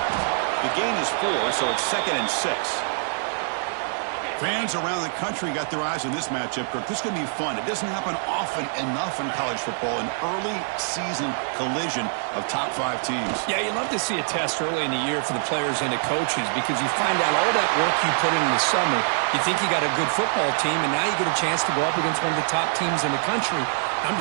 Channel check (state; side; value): silent; left; digital silence